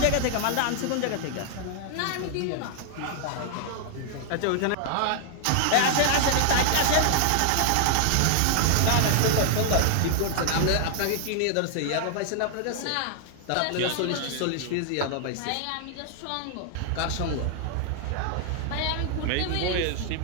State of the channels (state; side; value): different; both; correlation -0.01